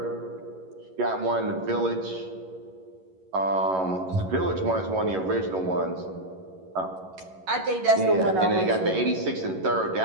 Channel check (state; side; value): late; left; 11 ms